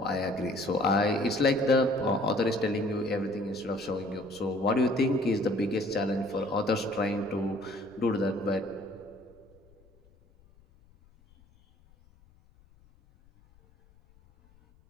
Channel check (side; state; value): left; noise; rumble, 29 dB below the sound